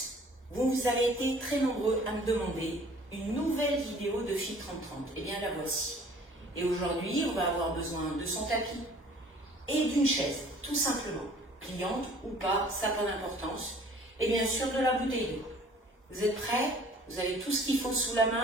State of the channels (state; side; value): normal; both; correlation 0.52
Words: Vous avez été très nombreux à me demander une nouvelle vidéo de Fit 30-30. Eh bien la voici. Et aujourd'hui, on va avoir besoin de son tapis et d'une chaise, tout simplement. Pliante ou pas, ça n'a pas d'importance. Et bien sûr de la bouteille d'eau. Vous êtes prêts? Vous avez tout ce qu'il faut sous la